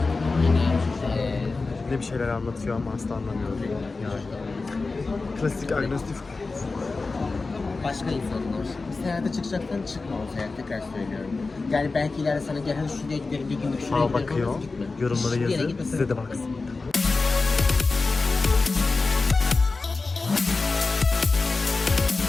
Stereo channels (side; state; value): right; quieter; 3.8 dB